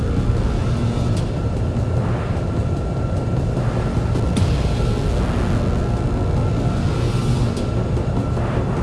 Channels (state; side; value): identical; both; correlation 1.00